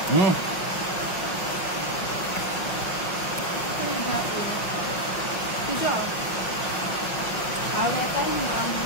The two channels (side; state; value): right; late; 5.6 ms